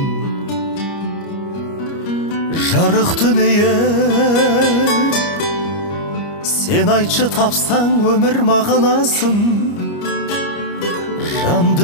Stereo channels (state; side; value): late; right; 29 ms